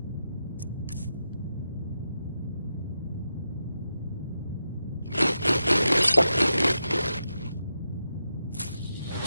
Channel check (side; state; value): both; inverted; correlation -0.87